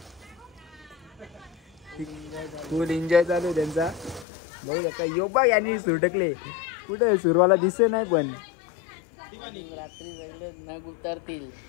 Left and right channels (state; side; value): drops out; right; at 4.2 s